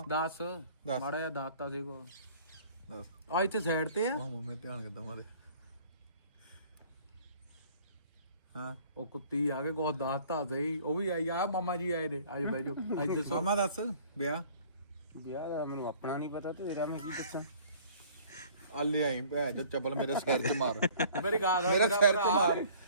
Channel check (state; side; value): inverted; both; correlation -0.52